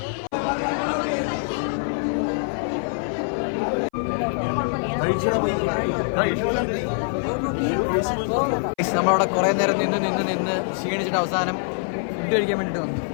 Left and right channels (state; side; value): silent; right; 56 dB below the other